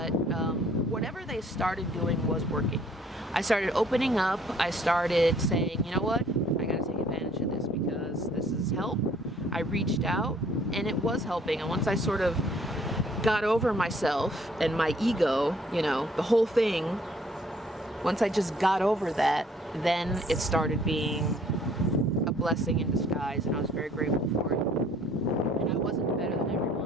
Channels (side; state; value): both; normal; correlation 0.60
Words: whatever they started doing was working. I started opening up. I started saying, you know what? I got to take advantage of this because this is help. I reached out and it was helping. And once I sort of got over myself and my ego, you know, the whole thing, once I just got over that, then it started being a blessing in disguise, and I was very grateful for it. And I wasn't better than